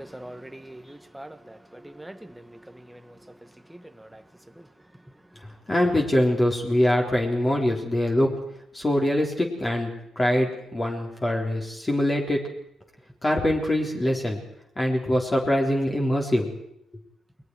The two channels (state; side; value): normal; both; correlation 0.94